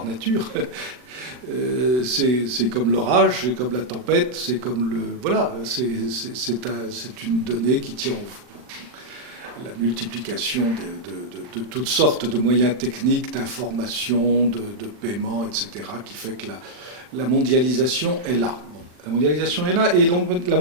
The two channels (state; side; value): late; left; 40 ms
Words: nature. C'est comme l'orage, c'est comme la tempête, c'est comme le... Voilà, c'est une donnée qui tient à la multiplication de toutes sortes de moyens techniques, d'information, de paiement, etc., qui fait que la mondialisation est là. La mondialisation est là et la